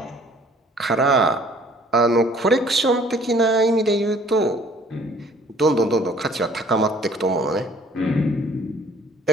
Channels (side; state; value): both; normal; correlation 0.56